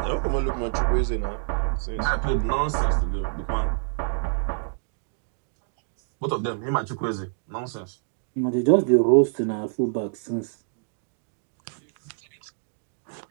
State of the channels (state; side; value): silent; left; digital silence